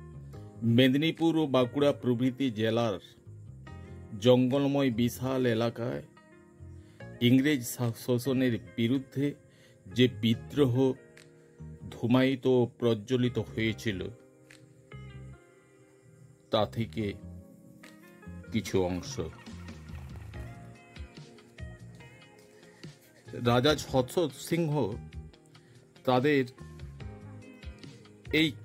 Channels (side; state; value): both; identical; correlation 1.00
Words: মেদিনীপুর ও বাঁকুড়া প্রভৃতি জেলার জঙ্গলময় বিশাল এলাকায় ইংরেজ শাসনের বিরুদ্ধে যে বিদ্রোহ ধূমায়িত ও প্রজ্বলিত হয়েছিল তা থেকে কিছু অংশ। রাজা ছত্র সিংহ তাদের এই